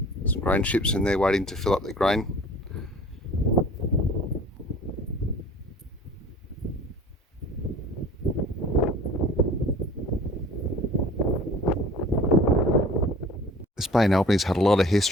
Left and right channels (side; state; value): both; normal; correlation 0.45